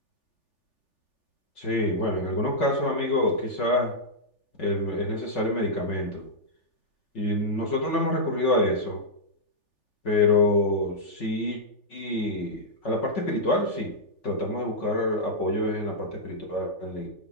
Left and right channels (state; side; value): late; right; 3.4 ms